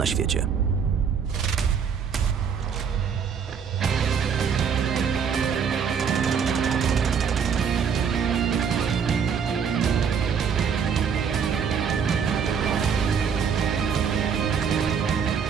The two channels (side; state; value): left; quieter; 6.8 dB